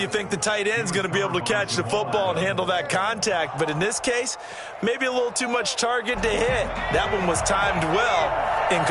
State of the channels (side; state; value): both; identical; correlation 1.00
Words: you think the tight end's going to be able to catch the football and handle that contact. But in this case, maybe a little too much target to hit. That one was timed well.